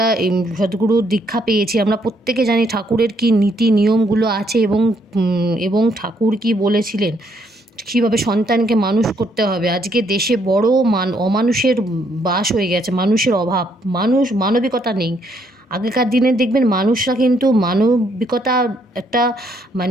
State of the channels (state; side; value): normal; both; correlation 0.71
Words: সদ্গুরুর দীক্ষা পেয়েছি, আমরা প্রত্যেকে জানি ঠাকুরের কী নীতি নিয়মগুলো আছে এবং ঠাকুর কী বলেছিলেন, কীভাবে সন্তানকে মানুষ করতে হবে। আজকে দেশে বড় অমানুষের বাস হয়ে গেছে, মানুষের অভাব, মানবিকতা নেই। আগেকার দিনে দেখবেন মানুষরা কিন্তু মানবিকতা একটা